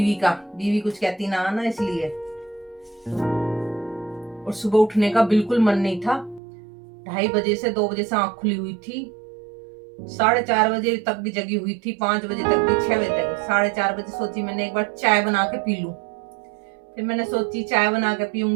का, बीवी कुछ कहती ना इसलिए। और सुबह उठने का बिल्कुल मन नहीं था। 2:30 बजे से 2 बजे से आंख खुली हुई थी, 4:30 बजे तक भी जगी हुई थी, 5 बजे तक भी, 6 बजे तक। 4:30 बजे सोची मैंने एक बार चाय बना के पी लूं। फिर मैंने सोची चाय बना के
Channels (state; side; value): drops out; left; at 6.4 s